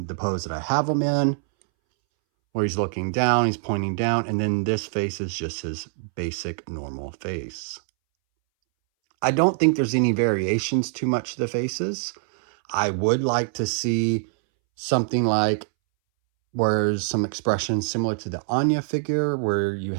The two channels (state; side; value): silent; left; 62 dB below the other